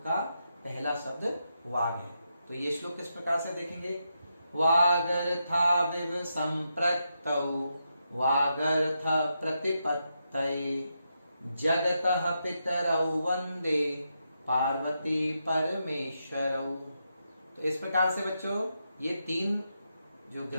का पहला शब्द वाग है। तो ये श्लोक किस प्रकार से देखेंगे, वागर्था विव संप्रक्तौ वागर्थ प्रतिपत्तये जगतः पितरौ वंदे पार्वती परमेश्वरौ। तो इस प्रकार से बच्चों ये 3 जो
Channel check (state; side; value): inverted; both; correlation -0.84